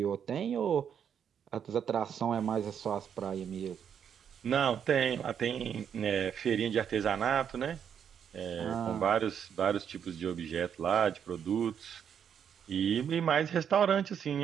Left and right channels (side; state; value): left; quieter; 8.2 dB